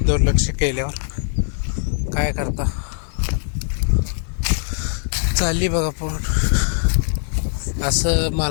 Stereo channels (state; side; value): silent; right; digital silence